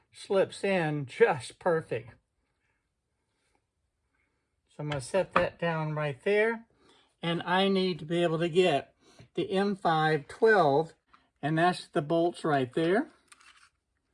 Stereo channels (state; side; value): identical; both; correlation 1.00